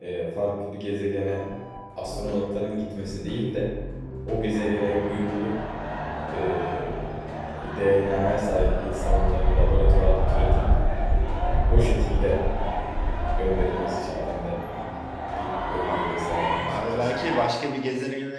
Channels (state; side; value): identical; both; correlation 1.00